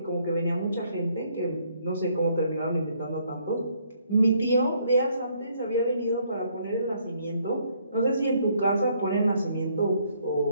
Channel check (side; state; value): both; inverted; correlation -0.68